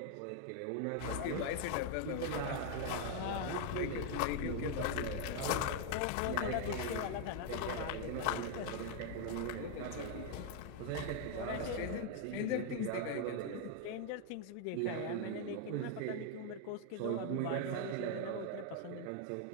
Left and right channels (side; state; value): both; different; correlation 0.00